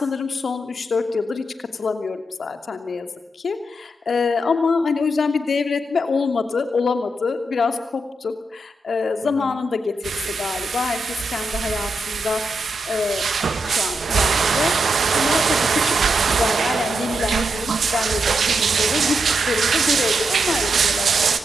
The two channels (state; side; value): normal; both; correlation 0.84